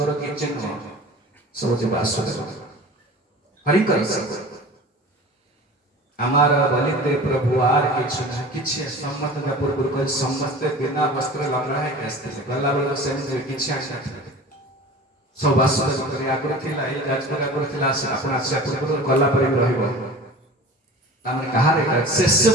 କିଛି ନୁହଁ ସବୁ ଯେ ବାସୁଦେବ ହରିଙ୍କର ସବୁ ଆମର ବଲିତେ ପ୍ରଭୁ ଆର କିଛି ସମସ୍ତେ ପୂର୍ବରୁ କହି ସମସ୍ତେ ବିନା ବସ୍ତ୍ର ଲଙ୍ଗଳା ହେଇକି ଆସିଥିଲେ ଗଲା ବେଳକୁ ସେମିତି କିଛି ଆସିନଥିଲେ सब वासुदेव आगुरी थिला ए जाजपुर आगुरी थिला आपण आसे पूर्व गला पर रहइबो तामने कहा रे शेष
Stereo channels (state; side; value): normal; both; correlation 0.38